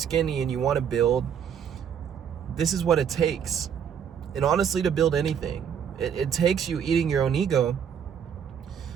and you want to build, this is what it takes. And honestly, to build anything, it takes you eating your own ego,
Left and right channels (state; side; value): quieter; left; 8.0 dB